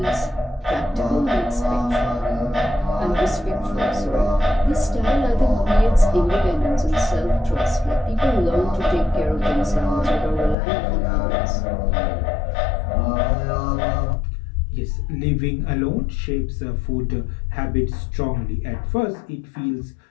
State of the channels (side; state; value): right; drops out; at 10.6 s